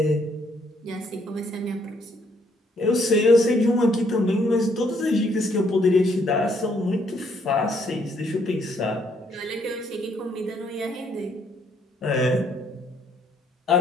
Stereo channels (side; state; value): both; normal; correlation 0.69